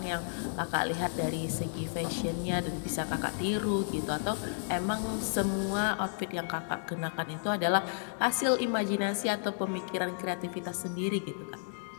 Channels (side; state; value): right; silent; 56 dB below the other